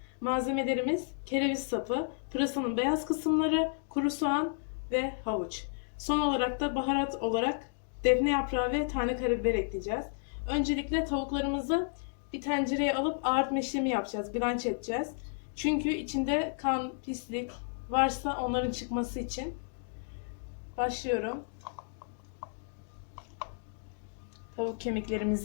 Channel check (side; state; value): right; silent; digital silence